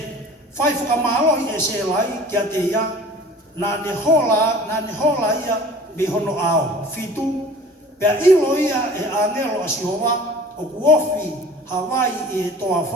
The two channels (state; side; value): normal; both; correlation 0.45